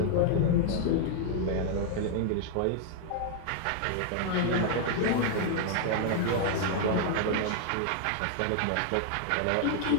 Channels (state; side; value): different; both; correlation 0.00